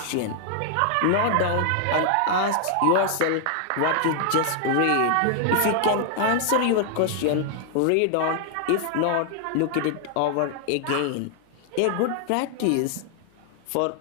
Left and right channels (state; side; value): different; both; correlation 0.00